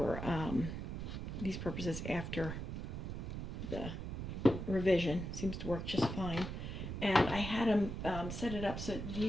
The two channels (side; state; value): right; noise; rumble, 5 dB below the sound